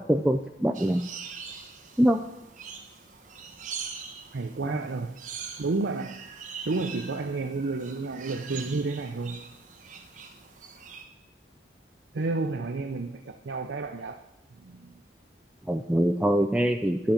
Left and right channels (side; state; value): both; normal; correlation 0.75